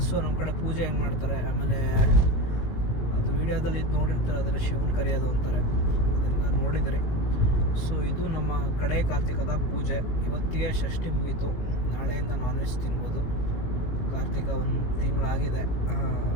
ಸೊ ನಮ್ಮ ಕಡೆ ಪೂಜೆ ಹೆಂಗೆ ಮಾಡ್ತಾರೆ, ಆಮೇಲೆ ಅದು ವೀಡಿಯೋದಲ್ಲಿ ಇದು ನೋಡಿರ್ತಾರೆ, ಅದರ ಶಿವನ ಕರೆಯೋದು ಅಂತಾರೆ, ಅದನ್ನು ನೋಡಿದ್ರಿ. ಸೊ ಇದು ನಮ್ಮ ಕಡೆ ಕಾರ್ತಿಕದ ಪೂಜೆ. ಇವತ್ತಿಗೆ ಷಷ್ಠಿ ಮುಗೀತು. ನಾಳೆಯಿಂದ ನಾನ್ ವೆಜ್ ತಿನ್ಬೋದು. ಕಾರ್ತಿಕ ಒಂದು ತಿಂಗಳಾಗಿದೆ.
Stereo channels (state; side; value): late; right; 18 ms